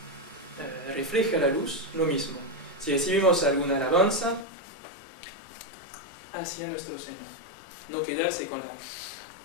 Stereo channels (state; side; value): drops out; right; at 4.5 s